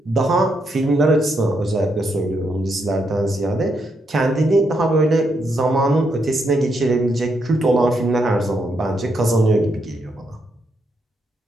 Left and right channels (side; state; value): both; normal; correlation 0.79